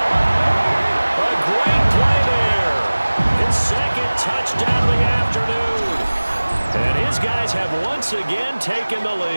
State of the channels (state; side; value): inverted; both; correlation -1.00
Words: A great play there. His 2nd touchdown of the afternoon. And his guys have once again taken the